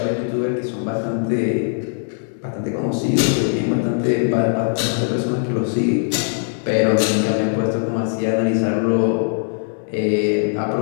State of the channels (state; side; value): silent; right; 65 dB below the other